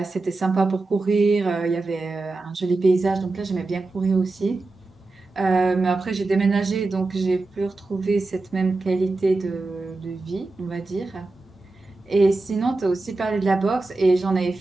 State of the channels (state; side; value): quieter; left; 3.3 dB